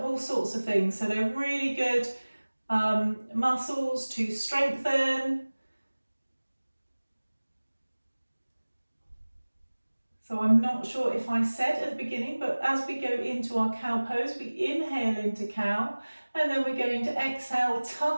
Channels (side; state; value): both; inverted; correlation -1.00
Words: sorts of things. So they're really good muscles to strengthen. So I'm not sure if I said at the beginning, but as we go into our cow pose, we inhale into cow, and then we're going to exhale,